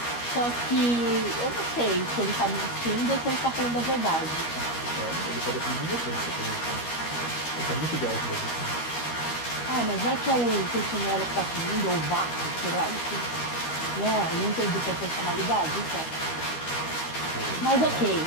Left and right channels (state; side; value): late; right; 13 ms